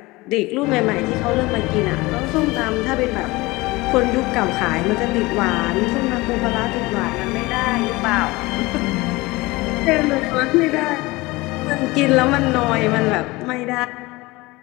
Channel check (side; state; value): right; quieter; 21.7 dB